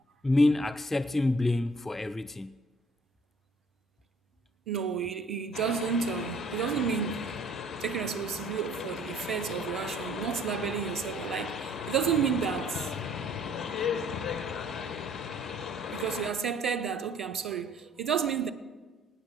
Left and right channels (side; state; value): both; normal; correlation 0.58